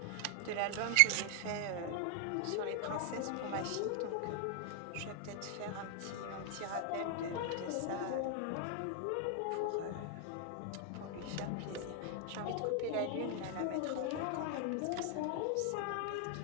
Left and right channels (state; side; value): different; both; correlation 0.00